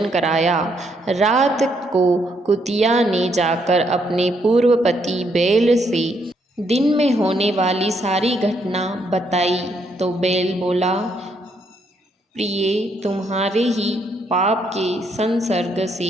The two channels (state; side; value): normal; both; correlation 0.74